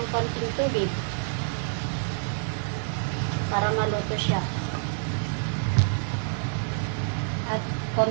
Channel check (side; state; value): left; silent; digital silence